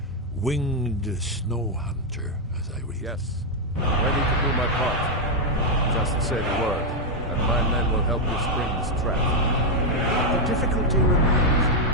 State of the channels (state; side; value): normal; both; correlation 0.00